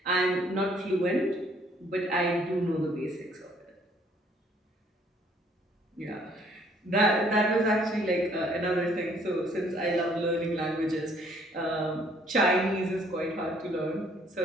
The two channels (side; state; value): both; normal; correlation 0.62